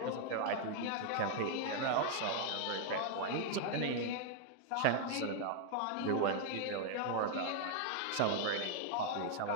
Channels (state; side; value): different; both; correlation 0.00